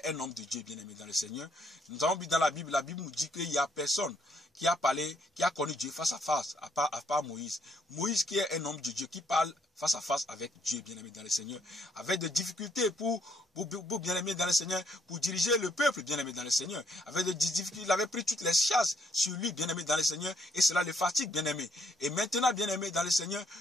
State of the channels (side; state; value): both; normal; correlation 0.71